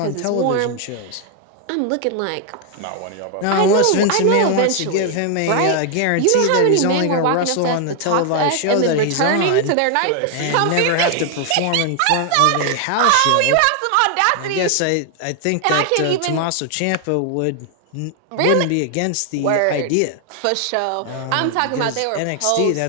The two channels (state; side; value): different; both; correlation 0.00